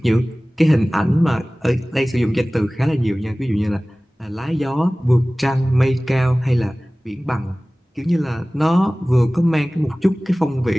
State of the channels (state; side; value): normal; both; correlation 0.98